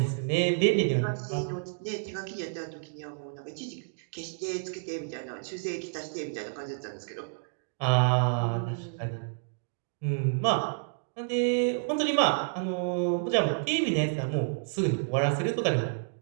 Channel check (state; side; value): silent; left; digital silence